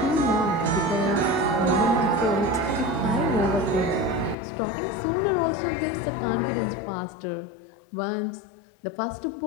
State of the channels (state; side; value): drops out; right; at 4.4 s